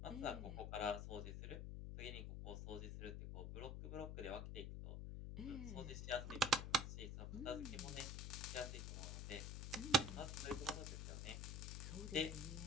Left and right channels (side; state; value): left; noise; hum, 4 dB below the sound